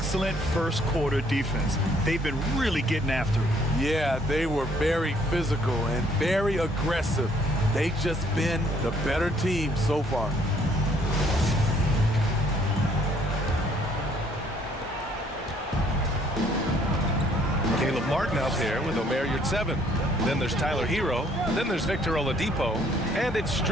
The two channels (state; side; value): normal; both; correlation 0.64